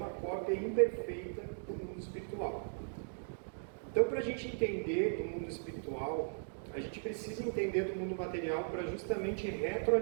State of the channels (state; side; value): silent; left; digital silence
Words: cópia imperfeita do mundo espiritual. Então, para a gente entender do mundo espiritual, a gente precisa entender do mundo material para justamente